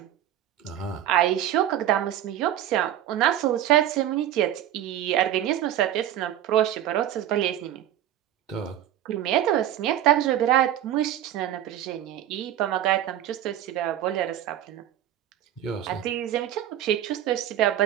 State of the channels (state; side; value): quieter; left; 11.7 dB